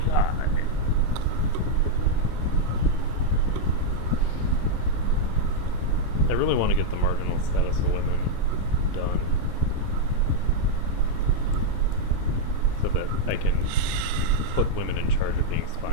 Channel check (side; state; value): both; different; correlation -0.02